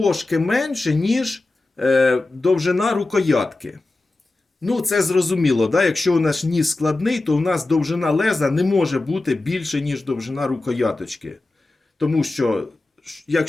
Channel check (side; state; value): right; quieter; 3.1 dB